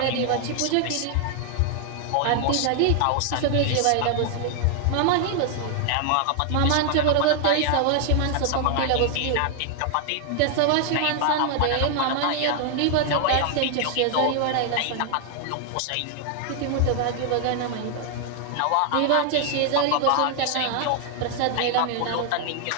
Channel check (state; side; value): different; both; correlation 0.00